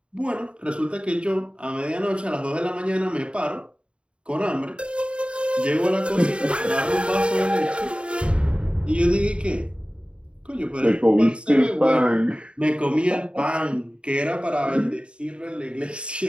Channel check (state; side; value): late; left; 0.055 ms